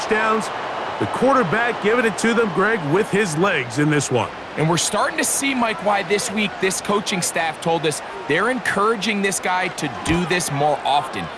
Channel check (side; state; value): both; identical; correlation 1.00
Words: The quarterback giving it to them, Greg, with his legs in this one. And we're starting to see, Mike, why this week this coaching staff told us they're encouraging this guy to do this more often.